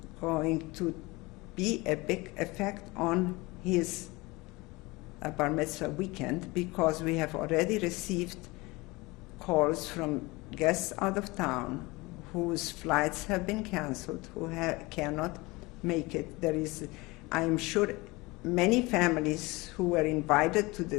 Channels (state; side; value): quieter; right; 23.2 dB